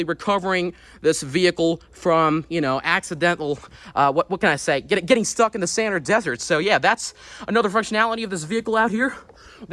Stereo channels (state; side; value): identical; both; correlation 1.00